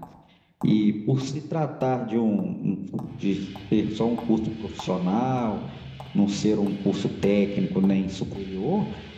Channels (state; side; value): identical; both; correlation 1.00